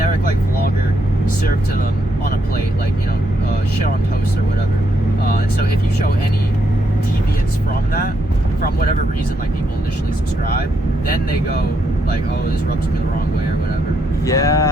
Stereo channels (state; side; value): normal; both; correlation 0.77